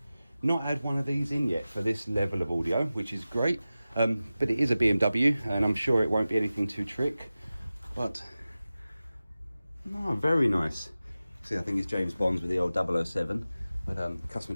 not had one of these in yet for this level of audio, which is great. But it is a BMW, and I'm sure it won't be anything too trick. But no, very nice. See, I think it's James Bond's with the old 007. But the customer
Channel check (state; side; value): inverted; both; correlation -0.95